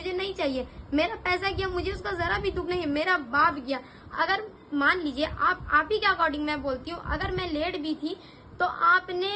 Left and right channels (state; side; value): identical; both; correlation 1.00